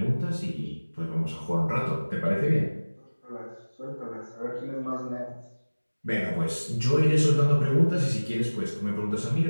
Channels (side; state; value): both; inverted; correlation -1.00